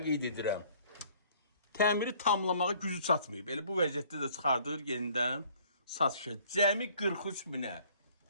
qeyd edirəm. Təmiri tamlamağa gücü çatmayıb. Elə bu vəziyyətdə də çıxardır yenidən satışa. Cəmi 43 minə.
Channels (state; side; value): inverted; both; correlation -0.57